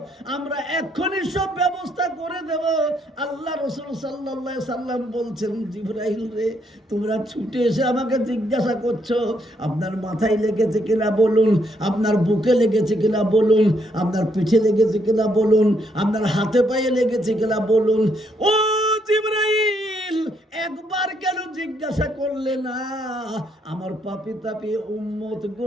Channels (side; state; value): both; normal; correlation 0.73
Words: আমরা এক্ষুনি সব ব্যবস্থা করে দেব। আল্লাহ রাসূল সাল্লাল্লাহু আলাইহি সাল্লাম বলছেন, জিবরাইল রে, তোমরা ছুটে এসে আমাকে জিজ্ঞাসা করছো আপনার মাথায় লেগেছে কিনা বলুন, আপনার বুকে লেগেছে কিনা বলুন, আপনার পিঠে লেগেছে কিনা বলুন, আপনার হাতে পায়ে লেগেছে কিনা বলুন। ও জিবরাইল, একবার কেন জিজ্ঞাসা করলে না? আমার পাপী তাপী উম্মত